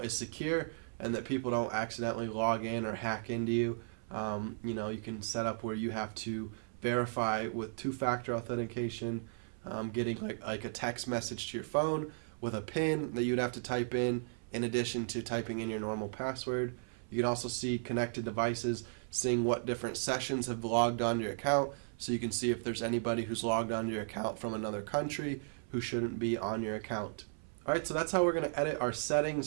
is secure and that people don't accidentally log in or hack into you. You can set up where you have to verify with two-factor authentication, getting like a text message to your phone with a PIN that you'd have to type in addition to typing in your normal password. You can also see connected devices, seeing what different sessions have logged onto your account, so you can see if there's anybody who's logged onto your account from another country who shouldn't be on your account. Alright, so that's how we're going to edit our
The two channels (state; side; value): silent; left; 54 dB below the other